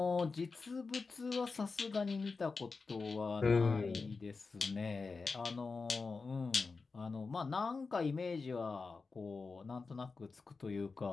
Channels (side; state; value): right; quieter; 4.3 dB